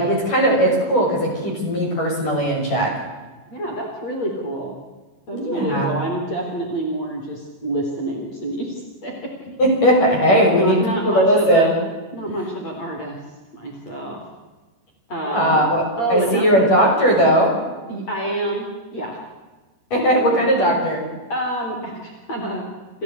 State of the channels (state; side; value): late; right; 11 ms